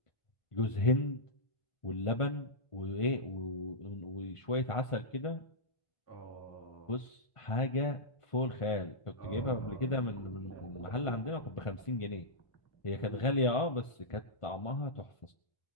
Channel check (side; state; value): right; late; 1.5 ms